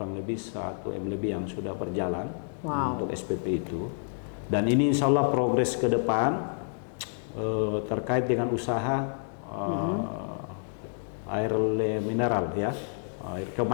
lebih 1 M lebih yang sudah berjalan untuk SPP itu. Dan ini insya Allah progres ke depan terkait dengan usaha air mineral ya. Air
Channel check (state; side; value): silent; right; digital silence